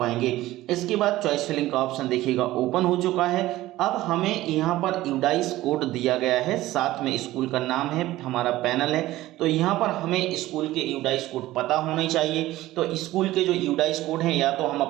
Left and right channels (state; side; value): quieter; left; 16.3 dB